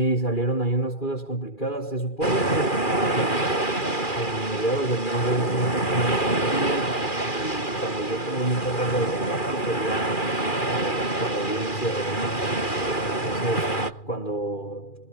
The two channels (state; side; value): late; right; 2.4 ms